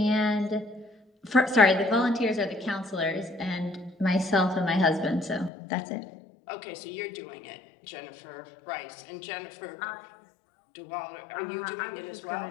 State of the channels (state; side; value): drops out; right; at 5.5 s